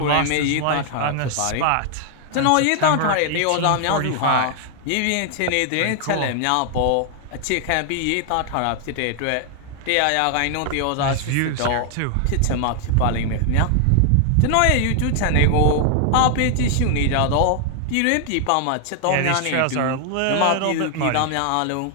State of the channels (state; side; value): different; both; correlation 0.00